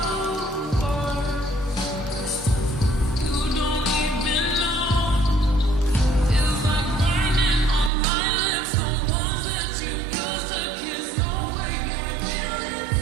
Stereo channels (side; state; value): left; drops out; at 7.9 s